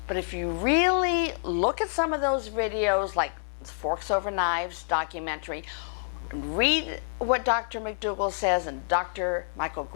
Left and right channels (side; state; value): right; silent; digital silence